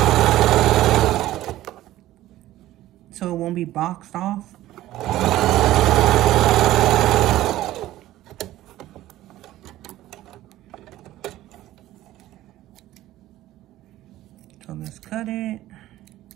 So it won't be boxed off. So let's cut it.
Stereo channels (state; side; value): quieter; left; 15.0 dB